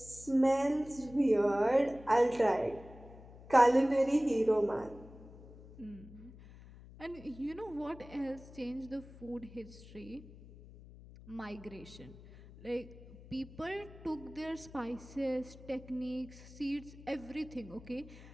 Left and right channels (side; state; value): left; noise; hum, 18 dB below the sound